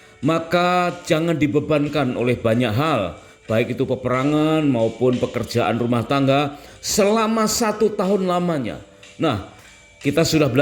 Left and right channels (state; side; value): identical; both; correlation 1.00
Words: maka jangan dibebankan oleh banyak hal, baik itu peperangan maupun pekerjaan rumah tangga selama 1 tahun lamanya. Nah, kita sudah